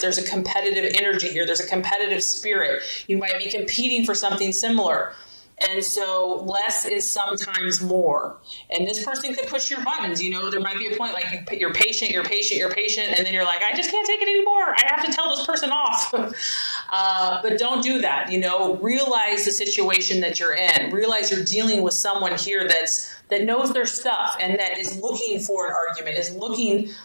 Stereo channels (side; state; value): both; inverted; correlation -1.00